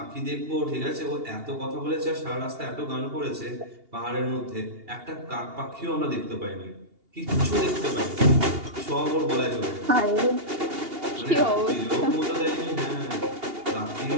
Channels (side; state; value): left; late; 2.8 ms